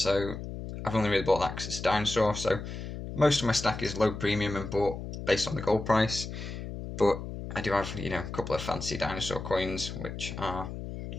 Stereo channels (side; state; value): left; noise; hum, 8 dB below the sound